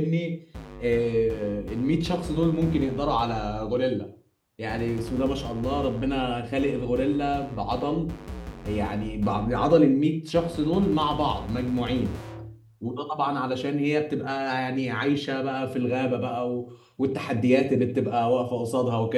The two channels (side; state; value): both; identical; correlation 1.00